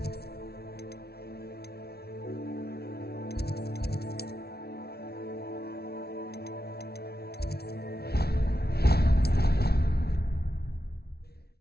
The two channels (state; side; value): late; right; 0.46 ms